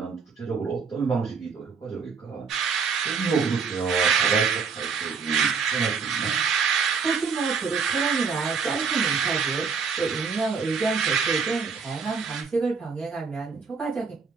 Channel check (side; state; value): left; quieter; 5.6 dB